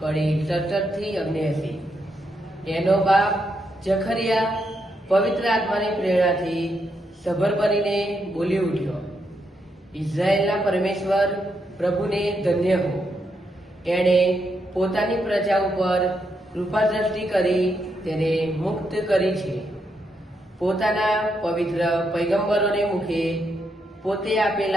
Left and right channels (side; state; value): both; normal; correlation 0.80